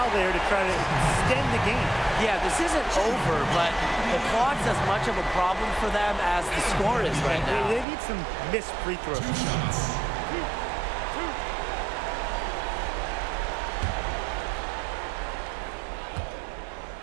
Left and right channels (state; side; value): drops out; left; at 7.9 s